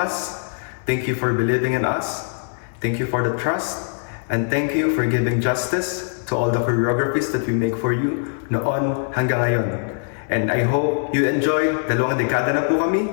thank you for believing in us, thank you for the trust, and thank you for giving justice to all the choreographies that we make for you noon hanggang ngayon. And I hope you enjoy, 2 dekada na po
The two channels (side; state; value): right; silent; 64 dB below the other